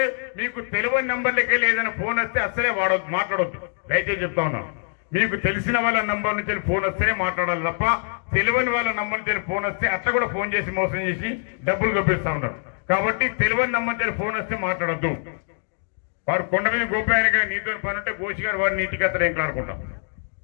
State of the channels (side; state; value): right; silent; 63 dB below the other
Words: మీకు తెలియని నంబర్లకి వెళ్ళి ఏదైనా ఫోన్ వస్తే అసలే వాడవద్దు, మాట్లాడవద్దు. దయచేసి చెప్తా ఉన్నాను, మీకు తెలిసిన వాళ్ళ నంబర్ నుంచి ఫోన్ వస్తేనే మాట్లాడాలి తప్ప తెలియని వాళ్ళ నంబర్ నుంచి ఫోన్ వస్తే అట్లా కూడా ఫోన్ చేసి మోసం చేసి డబ్బులు గొప్పిస్తా ఉన్నారు. కాబట్టి తెలియని నంబర్ నుంచి ఫోన్ వస్తే మాట్లాడద్దు. వారు కొండ మీద గోపాయనగా నీతో పని ఉంటే గోషి గారు వారిని ఇంటికి అత్తలు ఏం కానుకుంటాం.